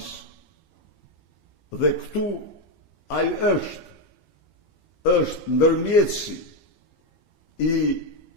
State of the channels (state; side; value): late; right; 15 ms